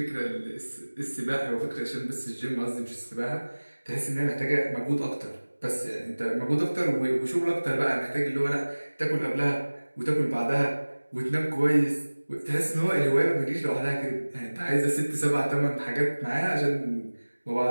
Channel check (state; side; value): inverted; both; correlation -1.00